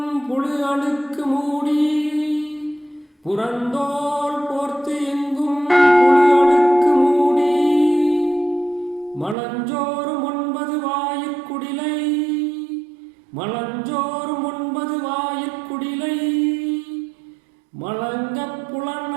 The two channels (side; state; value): left; drops out; at 9.3 s